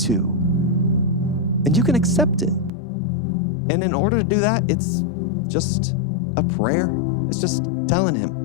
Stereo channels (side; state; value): right; drops out; at 2.7 s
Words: and you can accept it. And in order to do that, it's just a prayer. It's just telling him.